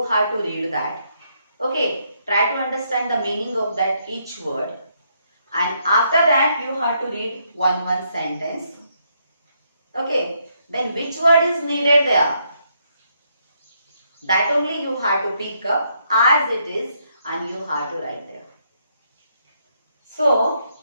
have to read that. Okay, try to understand the meaning of that each word. And after that, you have to read one sentence. Okay, then which word is needed there? That only you have to pick up as it is and you have to write there. So,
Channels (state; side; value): inverted; both; correlation -0.74